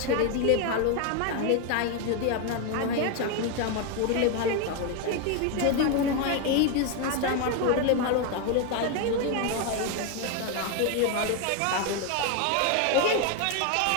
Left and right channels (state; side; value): different; both; correlation 0.01